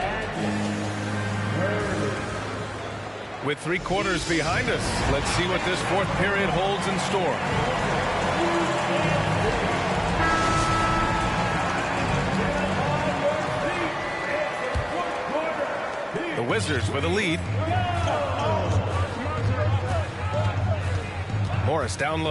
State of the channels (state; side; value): identical; both; correlation 1.00